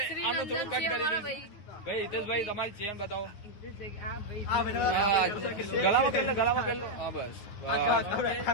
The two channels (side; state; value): right; late; 9.7 ms